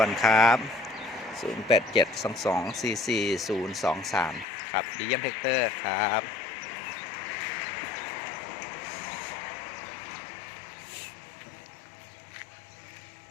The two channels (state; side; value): drops out; right; at 4.5 s